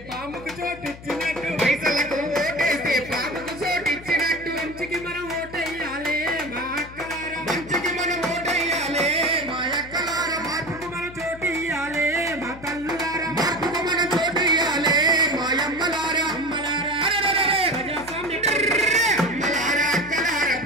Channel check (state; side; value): noise; left; hum, 16 dB below the sound